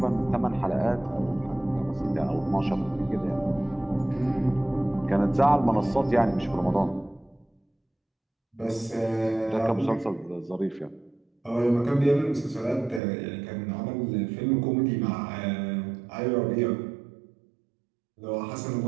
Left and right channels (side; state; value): left; drops out; at 13.0 s